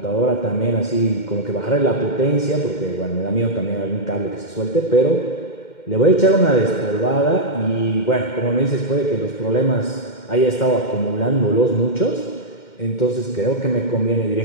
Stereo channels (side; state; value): right; late; 2.1 ms